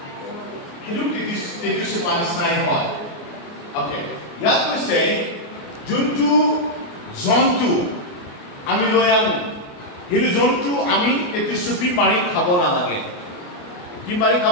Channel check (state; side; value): late; right; 28 ms